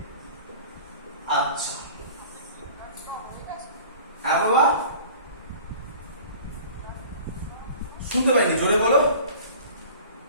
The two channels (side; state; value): both; inverted; correlation -0.45